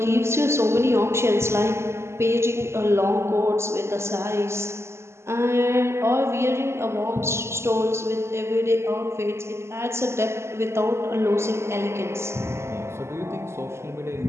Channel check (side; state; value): left; late; 0.13 ms